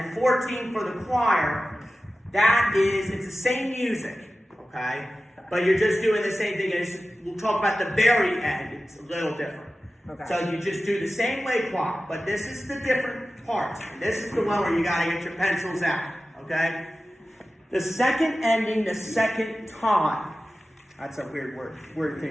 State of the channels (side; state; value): both; normal; correlation 0.95